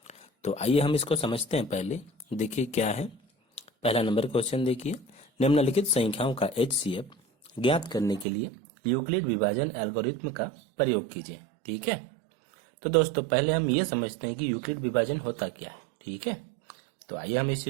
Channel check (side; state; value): left; drops out; at 8.2 s